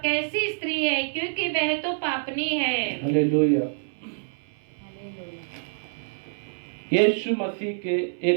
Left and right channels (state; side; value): silent; left; 61 dB below the other